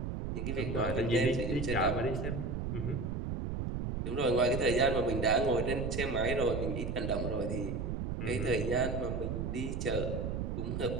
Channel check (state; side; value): noise; right; rumble, 2 dB below the sound